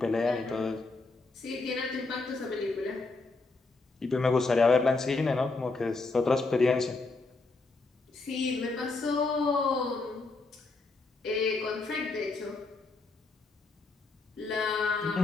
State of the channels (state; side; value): quieter; right; 3.6 dB